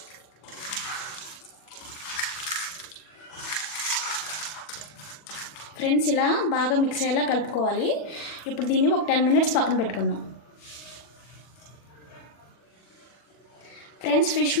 ఫ్రెండ్స్, ఇలా బాగా మిక్స్ అయ్యేలా కలుపుకోవాలి. ఇప్పుడు దీన్ని ఒక 10 మినిట్స్ పక్కన పెట్టుకుందాం. ఫ్రెండ్స్, ఫిష్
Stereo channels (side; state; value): right; late; 40 ms